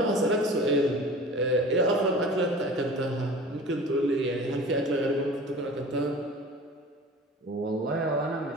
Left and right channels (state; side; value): normal; both; correlation 0.40